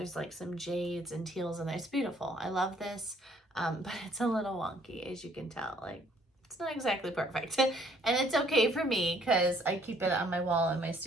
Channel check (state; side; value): normal; both; correlation 0.63